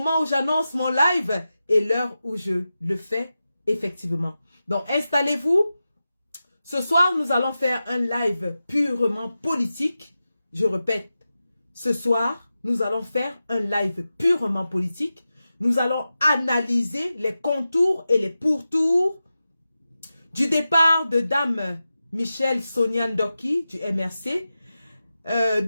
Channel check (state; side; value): inverted; both; correlation -0.93